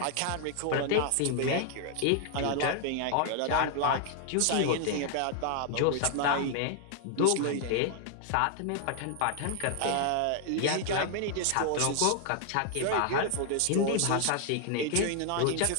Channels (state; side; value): different; both; correlation 0.00